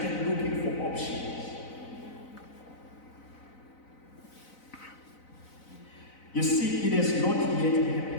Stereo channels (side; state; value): right; late; 4.0 ms